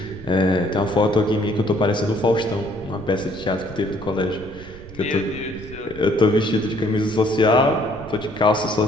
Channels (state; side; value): noise; right; rumble, 17 dB below the sound